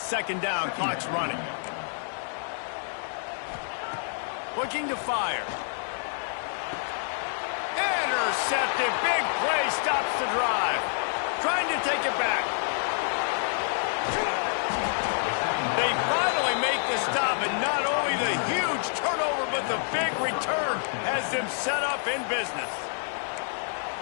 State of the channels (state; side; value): silent; right; digital silence